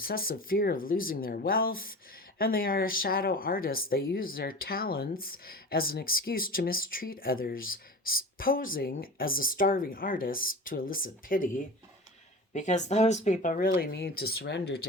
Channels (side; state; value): both; normal; correlation 0.33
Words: fear of losing their wealth. and they are a shadow artist. They use their talents as an excuse to mistreat others, posing as a starving artist to elicit pity, because those people really need to surrender